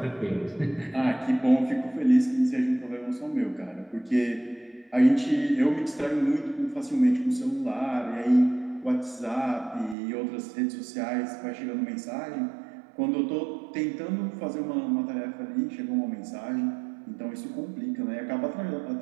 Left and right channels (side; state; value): left; drops out; at 10.0 s